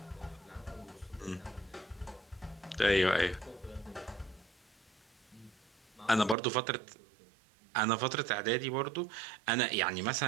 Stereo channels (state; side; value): drops out; left; at 6.4 s